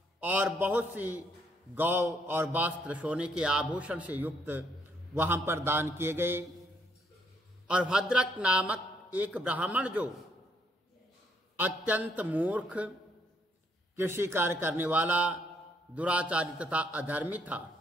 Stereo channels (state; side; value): normal; both; correlation 0.71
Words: और बहुत सी गौ और वस्त्र, सोने के आभूषण से युक्त वहां पर दान किए गए। और भद्रक नामक एक ब्राह्मण जो अत्यंत मूर्ख, कृषि कार्य करने वाला, दुराचारी तथा अधर्मी